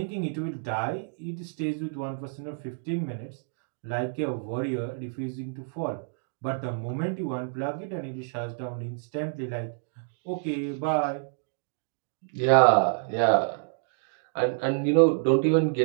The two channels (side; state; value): left; silent; digital silence